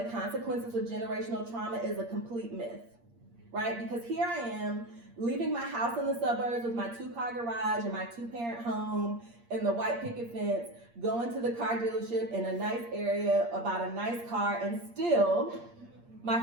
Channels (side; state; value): left; late; 8.6 ms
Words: consequences of generational trauma is a complete myth, right? Because here I am leaving my house in the suburbs with my 2-car garage and my 2-parent home and the white picket fence, going to the car dealership in a nice area about a nice car, and still